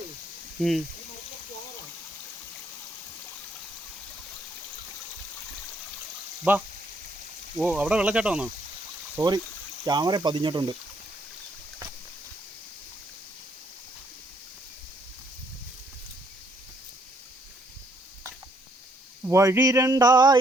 ബാ. ഓ അവിടെ വെള്ളച്ചാട്ടം വന്നോ? സോറി, ക്യാമറ പതിഞ്ഞിട്ടുണ്ട്. വഴി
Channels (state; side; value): normal; both; correlation 0.68